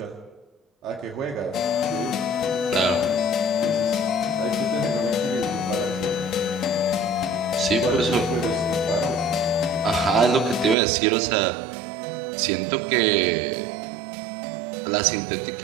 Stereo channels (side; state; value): left; drops out; at 10.8 s